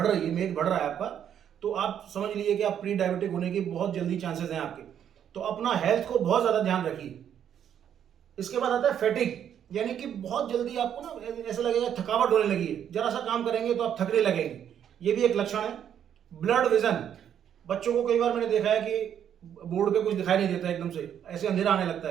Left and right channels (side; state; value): left; quieter; 9.3 dB